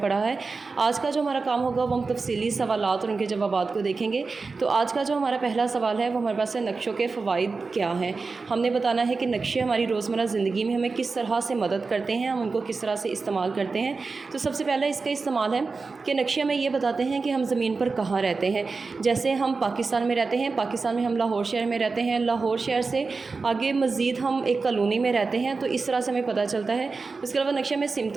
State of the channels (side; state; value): left; quieter; 4.2 dB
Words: ہے۔ آج کا جو ہمارا کام ہوگا وہ ہم تفصیلی سوالات اور ان کے جوابات کو دیکھیں گے۔ تو آج کا جو ہمارا پہلا سوال ہے وہ ہمارے پاس ہے نقشوں کے فوائد کیا ہیں۔ ہم نے بتانا ہے کہ نقشے ہماری روزمرہ زندگی میں ہمیں کس طرح سے مدد کرتے ہیں، ہم ان کو کس طرح سے استعمال کرتے ہیں۔ تو سب سے پہلے اس کا استعمال ہے کہ نقشے ہمیں یہ بتاتے ہیں کہ ہم زمین پر کہاں رہتے ہیں۔ جیسے ہم پاکستان میں رہتے ہیں، پاکستان میں ہم لاہور شہر میں رہتے ہیں، لاہور شہر سے آگے مزید ہم ایک کالونی میں رہتے ہیں، تو اس طرح سے ہمیں پتہ چلتا ہے۔ اس کے علاوہ نقشے میں